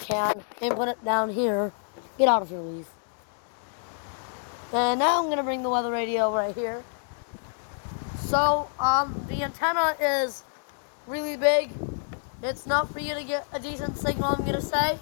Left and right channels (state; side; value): silent; right; 60 dB below the other